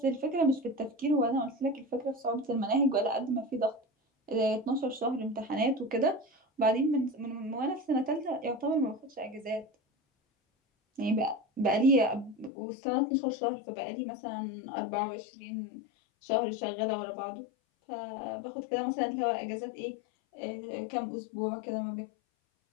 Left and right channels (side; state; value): right; drops out; at 12.5 s